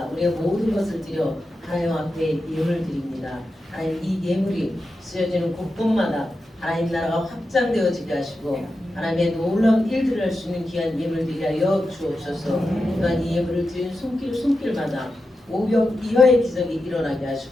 우리의 모든 것을 드려 하나님 앞에 예물을 드립니다. 하나님 이 예물이 쓰여지는 곳곳마다 하나님 나라가 확장되어지게 하시고 하나님의 놀라운 일들을 할 수 있는 귀한 예물들이 하여 주옵소서. 또한 이 예물을 드린 손길마다 500 이하의 기적이 일어나게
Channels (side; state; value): both; normal; correlation 0.90